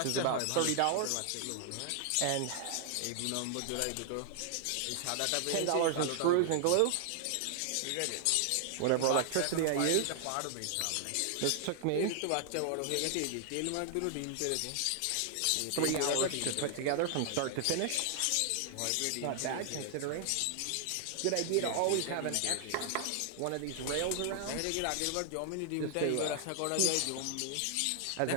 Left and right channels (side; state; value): both; different; correlation 0.00